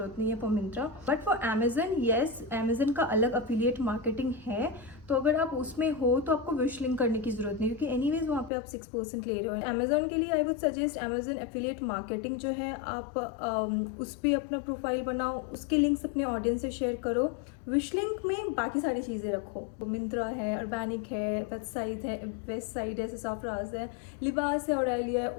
नहीं है for Myntra. But for Amazon, yes, Amazon का अलग अफिलिएट मार्केटिंग है। तो अगर आप उसमें हो तो आपको विश लिंक करने की जरूरत नहीं, क्योंकि एनीवेज वहाँ पे आप 6% ले रहे हो। अमेजन के लिए I would suggest Amazon affiliate marketing जो है, आप उस पर अपना प्रोफाइल बनाओ, उसके लिंक्स अपने ऑडियंस से शेयर करो। विश लिंक में बाकी सारी चीज़ें रखो, मिंत्रा है, अर्बैनिक है, वेबसाइट है, ससाफ्राज है, लिबास है, ऑरेलिया है।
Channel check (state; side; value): drops out; right; at 8.5 s